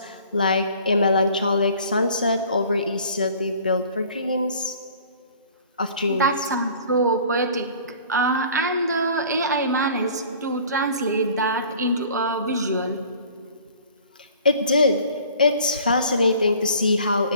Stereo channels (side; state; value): both; inverted; correlation -0.49